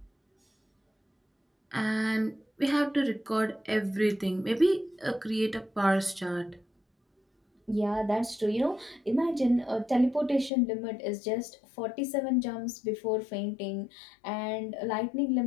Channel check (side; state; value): right; drops out; at 10.5 s